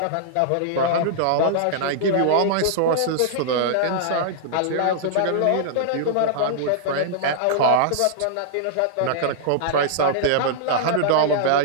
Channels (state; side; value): different; both; correlation -0.02